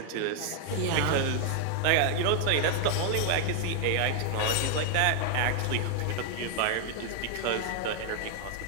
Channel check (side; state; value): both; different; correlation 0.00